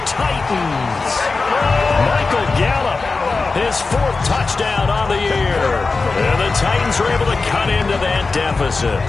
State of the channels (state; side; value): quieter; right; 4.0 dB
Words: Titans. Michael Gallup, his 4th touchdown on the year. And the Titans are able to cut into that deficit.